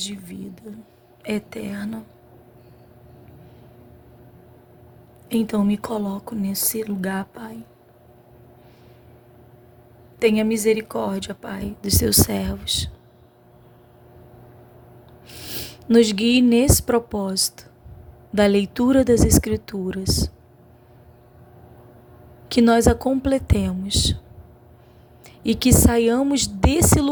vida eterna. Então me coloco nesse lugar, Pai. Tenha misericórdia, Pai, dos Teus servos. Nos guie nesse propósito da leitura das Escrituras. Que nós a completemos e que saiamos desse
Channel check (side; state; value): both; identical; correlation 1.00